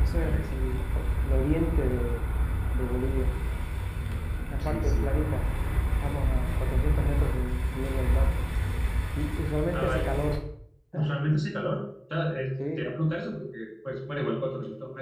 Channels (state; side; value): identical; both; correlation 1.00